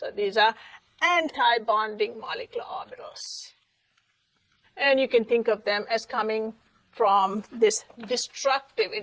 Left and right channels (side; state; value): both; identical; correlation 1.00